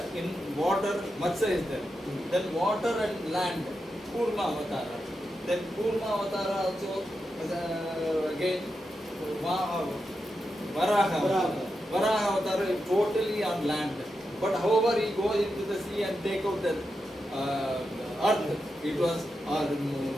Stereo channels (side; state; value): both; normal; correlation 0.88